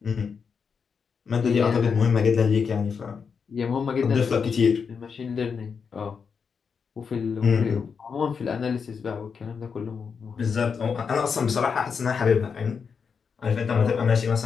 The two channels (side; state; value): right; quieter; 6.0 dB